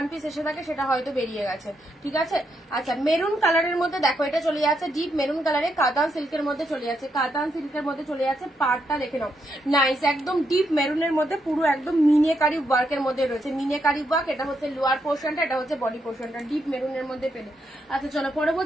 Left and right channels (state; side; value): normal; both; correlation 0.80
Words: পিস এসে থাকে সেটা হয়তো বেরিয়ে গেছে, ঠিক আছে? আচ্ছা মেরুন কালারের মধ্যে দেখো, এটা চলে যাচ্ছে ডিপ মেরুন কালারে, কাতান সিল্কের মধ্যে চলে যাচ্ছে, কাতান সিল্কের মধ্যে চলে যাচ্ছে। পার্টটা দেখে নাও, নাইস, একদম ডিপ মেরুনের মধ্যে পুরো একদম মিনেকারি ওয়ার্কের মধ্যে রয়েছে, মিনেকারি ওয়ার্ক। এটা হচ্ছে লোয়ার পোর্শনটা, এটা হচ্ছে বডি পোর্শনটা, ডিপ মেরুনের মধ্যে পেলে। আচ্ছা চলো